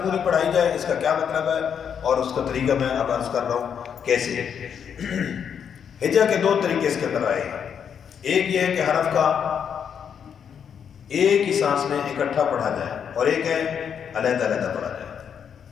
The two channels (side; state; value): right; quieter; 7.7 dB